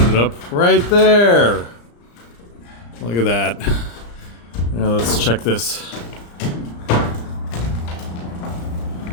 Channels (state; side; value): late; right; 34 ms